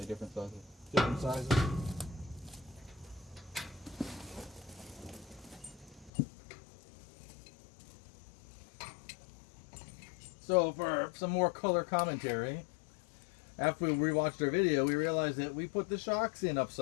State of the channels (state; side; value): drops out; right; at 6.1 s